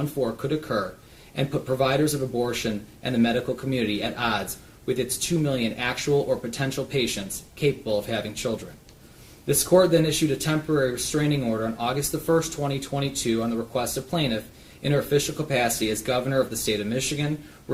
could occur and put providers of abortion and the medical community at odds with its 2 million actual or potential patients capable of having children. This court then issued a temporary restraining order on August 1, 2022 on the request of plaintiff in her official capacity as governor of the state of Michigan,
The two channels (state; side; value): identical; both; correlation 1.00